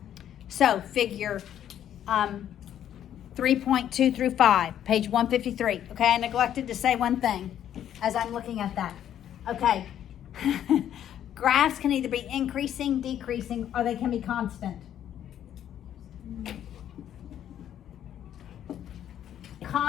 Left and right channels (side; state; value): right; quieter; 10.5 dB